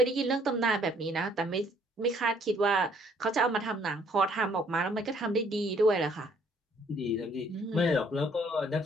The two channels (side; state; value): both; normal; correlation 0.63